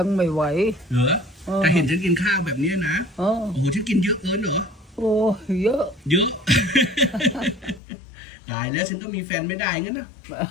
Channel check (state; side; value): drops out; right; at 7.8 s